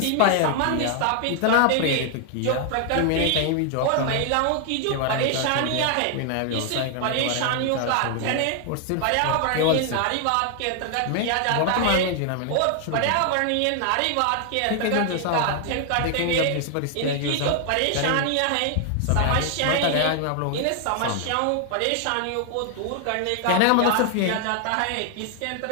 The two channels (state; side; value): different; both; correlation 0.00